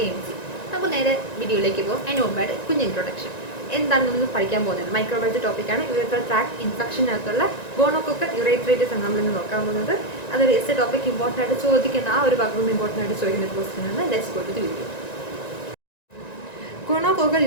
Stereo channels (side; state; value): right; late; 1.9 ms